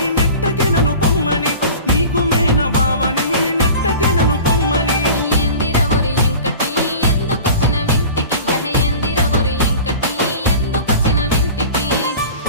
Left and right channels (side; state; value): both; inverted; correlation -0.38